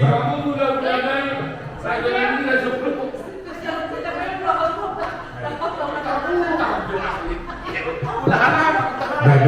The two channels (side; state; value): both; identical; correlation 1.00